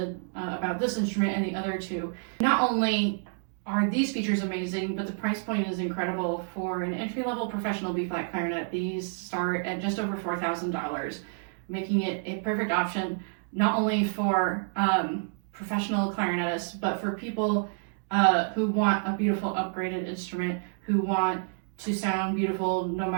about this instrument and the other two. Not only are these features amazing, but the price point is incredible. For an entry-level professional B-flat clarinet, these start at just over $4,000, making it a perfect option not only for professional clarinetists, but for people who want a beautiful upgraded instrument, who want to sound beautiful no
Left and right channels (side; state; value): left; silent; 59 dB below the other